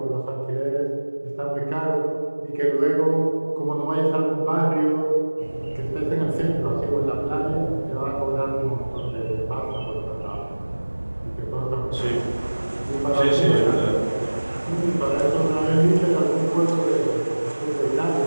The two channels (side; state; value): both; inverted; correlation -1.00